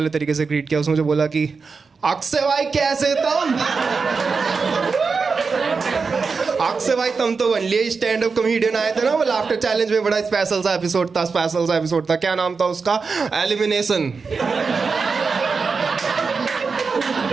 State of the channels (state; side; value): quieter; left; 4.9 dB